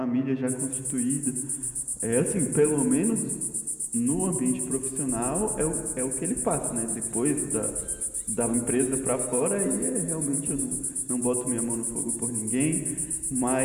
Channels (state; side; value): identical; both; correlation 1.00